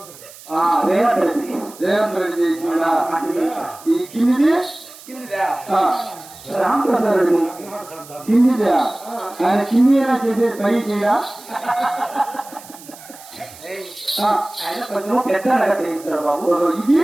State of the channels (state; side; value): noise; right; hiss, 19 dB below the sound